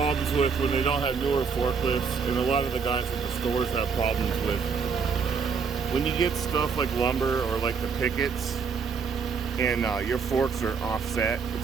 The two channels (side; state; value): left; quieter; 5.7 dB